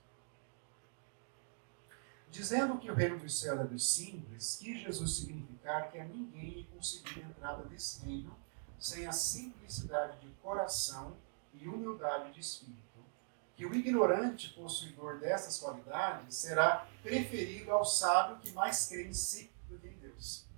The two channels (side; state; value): left; silent; digital silence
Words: Dizendo que o reino dos céus é dos simples, quis Jesus significar que a ninguém é conseguir a entrada nesse reino sem a simplicidade de coração e humildade de espírito. Que o ignorante possuidor dessas qualidades será preferido ao sábio que mais crê em si do que em Deus.